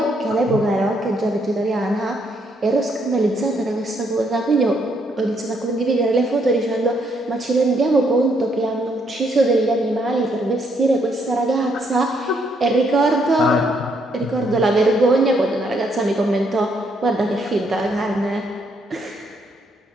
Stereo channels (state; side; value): normal; both; correlation 0.73